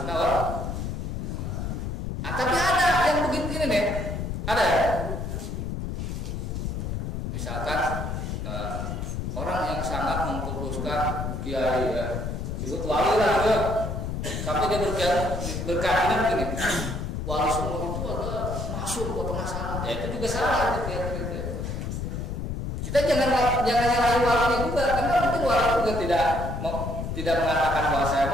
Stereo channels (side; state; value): left; noise; rumble, 4 dB below the sound